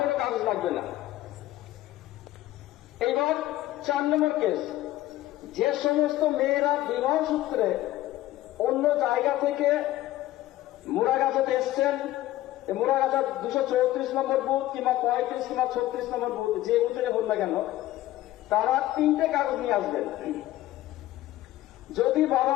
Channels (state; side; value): quieter; right; 15.2 dB